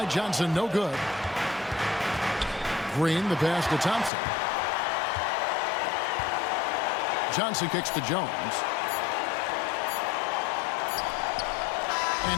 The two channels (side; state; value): right; drops out; at 4.1 s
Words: Johnson, no good. Green, the pass to Thompson. Johnson kicks to Jones.